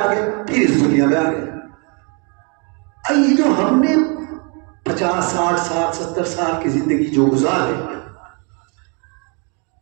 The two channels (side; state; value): left; quieter; 35.0 dB